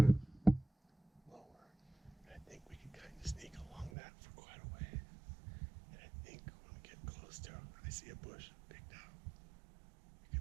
lower. And I think we can kind of sneak along that for quite a way. And I think when we get close to it, I see a bush picked out.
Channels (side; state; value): left; drops out; at 3.9 s